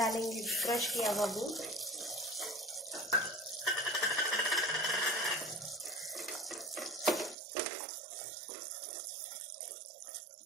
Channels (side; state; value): left; drops out; at 7.4 s